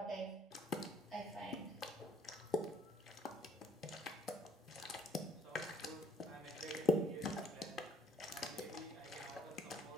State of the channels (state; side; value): normal; both; correlation 0.60